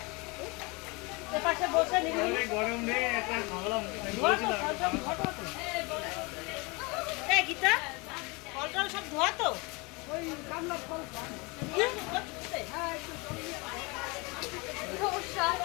পাশে বসে গরম রে একটা গীতা ফল টল সব ধোয়া তো ওই কামলা ফল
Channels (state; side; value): quieter; right; 27.5 dB